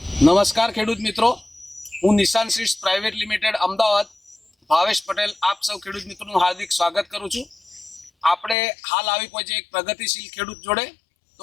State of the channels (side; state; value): right; drops out; at 8.6 s